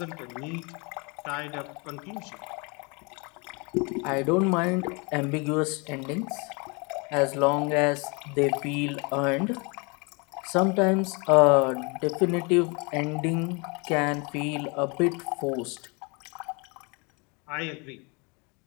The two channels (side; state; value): right; quieter; 30.5 dB